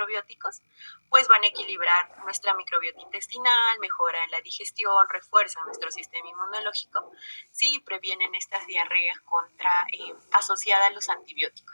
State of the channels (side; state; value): both; inverted; correlation -1.00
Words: Pues van a equilibrar nuestra microbiota intestinal, mejoran la digestión, refuerzan nuestro sistema inmunológico, sí, previenen estas diarreas asociadas a los